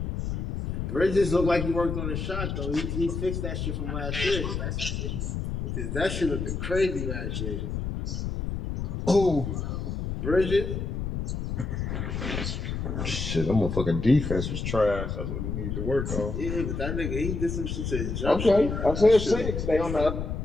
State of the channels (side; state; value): left; noise; rumble, 3 dB below the sound